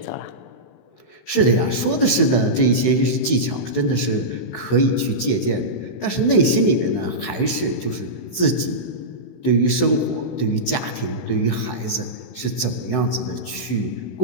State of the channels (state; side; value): late; right; 16 ms